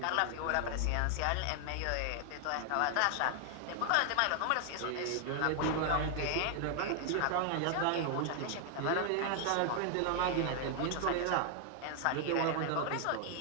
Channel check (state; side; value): different; both; correlation 0.00